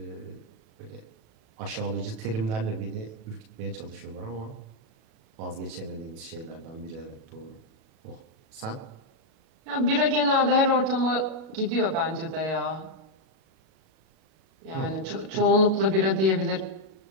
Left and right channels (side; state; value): left; late; 37 ms